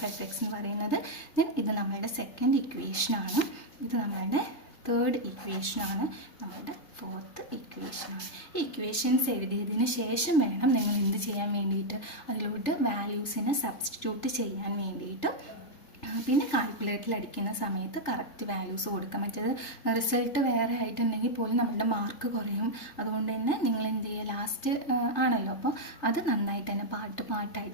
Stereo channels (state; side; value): late; right; 3.3 ms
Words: എഫ് എക്സ് എന്ന് പറയുന്നത്. ദെൻ ഇത് നമ്മളുടെ സെക്കൻഡ് ഇക്വേഷനാണ്. ഇത് നമ്മളുടെ തേർഡ് ഇക്വേഷനാണ്. നമ്മളുടെ ഫോർത്ത് ഇക്വേഷനാണ്. ഈ ഇക്വേഷൻസ് എഴുതിയതിന് ശേഷം വേണം നിങ്ങൾ എന്ത് ചെയ്യാൻ വേണ്ടിയിട്ട്? അതിലോട്ട് വാല്യൂസിനെ സബ്സ്റ്റിറ്റ്യൂട്ട് ചെയ്യാൻ വേണ്ടിയിട്ട്. പിന്നെ കാൽക്കുലേറ്ററിൽ അടിക്കുന്ന സമയത്ത് കറക്റ്റ് വാല്യൂസ് കൊടുക്കാം. മറ്റേത് റിസൾട്ട് വേറെ ആയിട്ടുണ്ടെങ്കിൽ പോലും നമ്മളുടെ മാർക്ക് കുറയും. അതുകൊണ്ട് തന്നെ നിങ്ങൾ എന്ത് ചെയ്യുക? ലാസ്റ്റ് ആണല്ലോ, അപ്പോൾ അത് നന്നായിട്ട് തന്നെ